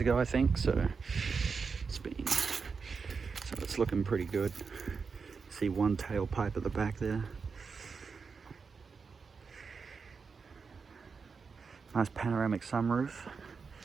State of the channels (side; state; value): left; quieter; 5.2 dB